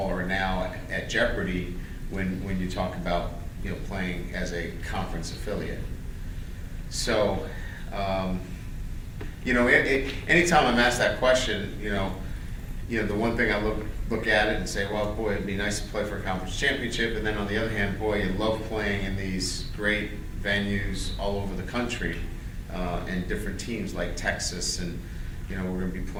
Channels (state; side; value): identical; both; correlation 1.00